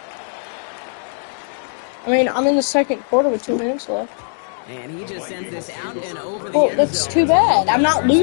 I mean, I'm in the second quarter with 2 minutes left. And he just sends this out and over the Well, end that's zone. too bad. I'm not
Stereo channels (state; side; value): silent; right; digital silence